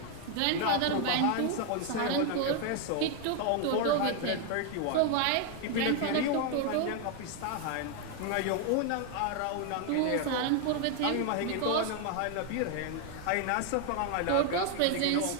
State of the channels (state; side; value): different; both; correlation 0.01